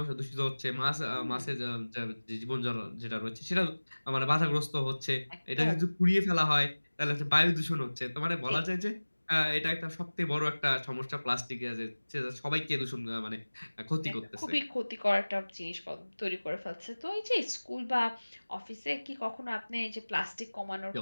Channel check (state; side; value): inverted; both; correlation -1.00